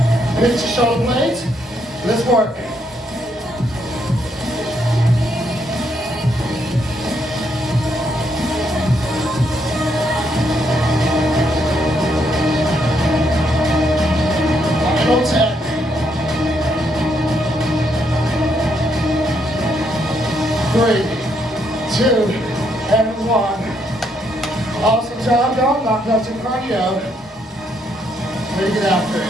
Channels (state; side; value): normal; both; correlation 0.75